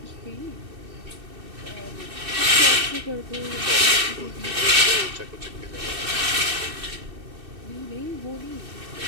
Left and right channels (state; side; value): late; left; 2.6 ms